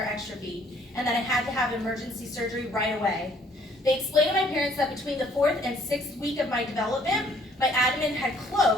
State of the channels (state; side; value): normal; both; correlation 0.61